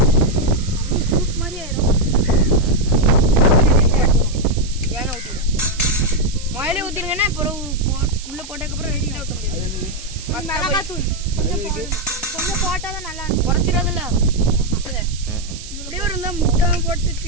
சூப் மாதிரி ஆயிரும். ஏன்னா ஊற்றிடும். மயிலே ஊற்றிருங்கன்னா அப்புறம் உள்ள போட்டதுக்கப்புறம் ரெடி ஊற்ற முடியாது. மிளகாத்தூள் கொஞ்சம் போட்டாதான் நல்லா இருக்கும். குறைச்சிடாதுல்ல. இப்படியே ஒரு இருந்தால் முட்டை போட்டு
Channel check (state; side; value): noise; right; hiss, 14 dB below the sound